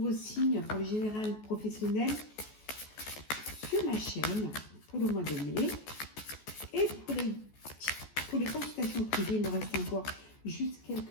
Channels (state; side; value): late; right; 14 ms